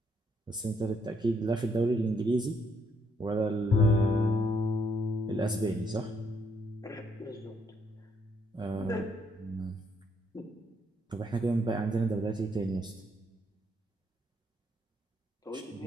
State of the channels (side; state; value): both; normal; correlation 0.72